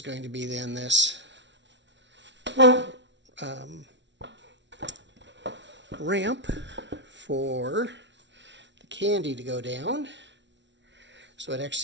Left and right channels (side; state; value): left; late; 0.52 ms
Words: going to be then this ramp for the candy to go down. So it